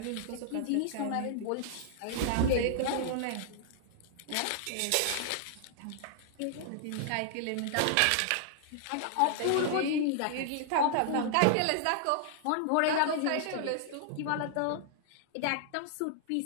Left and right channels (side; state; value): both; different; correlation -0.01